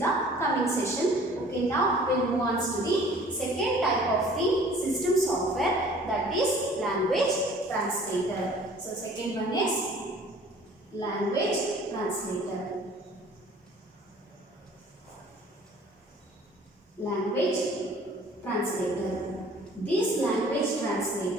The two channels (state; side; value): normal; both; correlation 0.51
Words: the coming session. Okay, now we'll move on to the second type of the system software, that is language translator. So second one is language translator. Language translator. This language